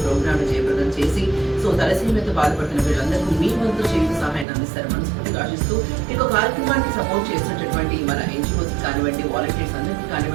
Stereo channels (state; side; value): drops out; left; at 4.5 s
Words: ప్రోగ్రామ్ జయప్రదం చేసి సో తలసేమియాతో బాధపడుతున్న వీళ్ళందరికీ మీ వంతు చేతి సహాయం అందిస్తారు మనస్ఫూర్తిగా ఆశిస్తూ ఈ కార్యక్రమానికి సపోర్ట్ చేసినటువంటి మన ఎన్జిఓస్ కానివ్వండి, వాలంటీర్స్ అందరికీ